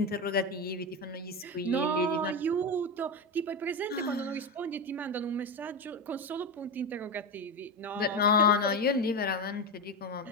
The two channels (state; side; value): normal; both; correlation 0.16